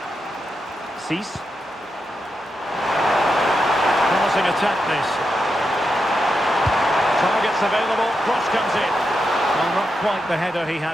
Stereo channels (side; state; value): both; normal; correlation 0.86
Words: Cease. Promising attack this. Targets available, cross comes in. Well, not quite the header he